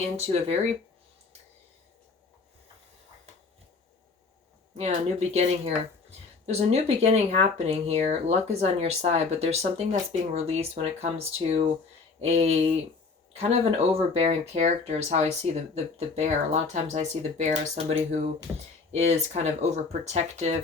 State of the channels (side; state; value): right; quieter; 4.4 dB